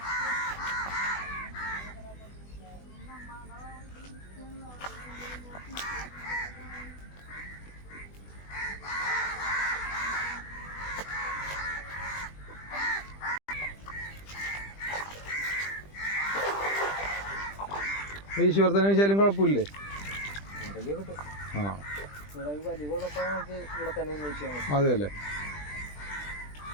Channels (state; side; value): late; right; 20 ms